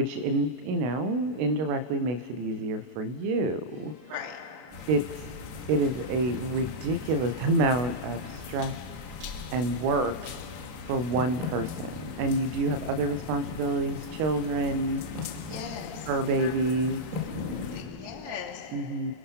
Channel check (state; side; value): late; left; 32 ms